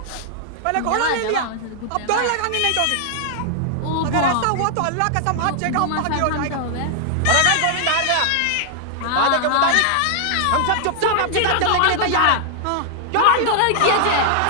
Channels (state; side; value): different; both; correlation 0.00